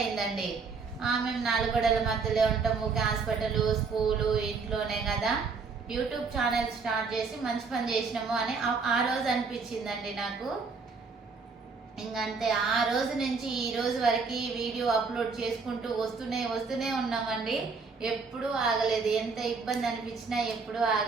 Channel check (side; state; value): left; quieter; 4.8 dB